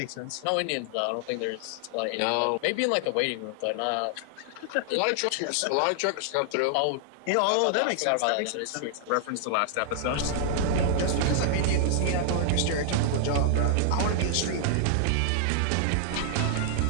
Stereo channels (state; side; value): different; both; correlation 0.00